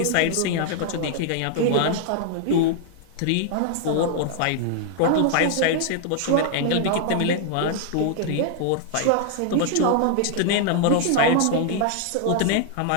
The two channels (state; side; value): different; both; correlation 0.00